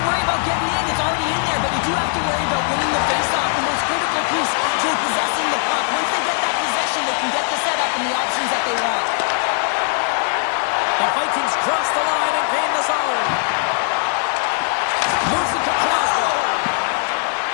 worry about getting in. It's already in there, but you do have to worry about winning the faceoff, the most critical piece to possessing the puck. Once they get that possession, they can get the setup and the options that they want. The Vikings cross the line and gain the zone. Moves it to Crosby.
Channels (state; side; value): silent; right; 56 dB below the other